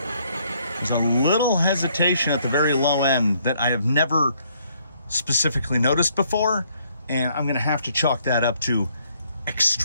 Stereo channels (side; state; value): both; inverted; correlation -0.68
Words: There's a little hesitation at the very low end that I have never specifically noticed before, and I'm gonna have to chalk that up to